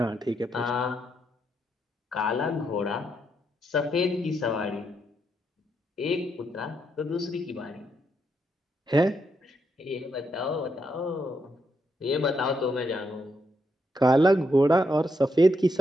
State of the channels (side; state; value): both; normal; correlation 0.79